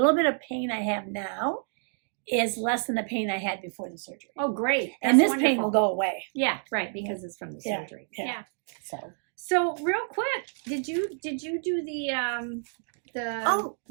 bit of pain I have now is less than the pain I had before the surgery. Oh, great. And this That's pain will wonderful. go away. Yeah, right, because it's from the Yeah, surgery. yeah. So real quick, did you do the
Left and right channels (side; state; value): left; silent; 57 dB below the other